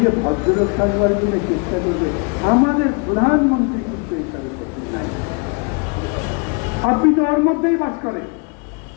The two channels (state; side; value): quieter; right; 34.5 dB